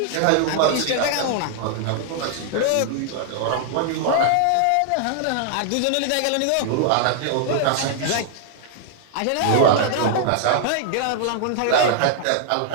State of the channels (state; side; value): different; both; correlation 0.00